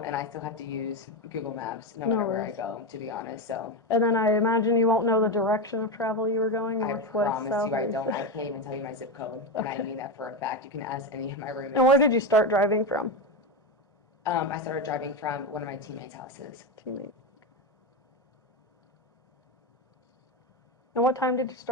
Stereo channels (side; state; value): both; normal; correlation 0.14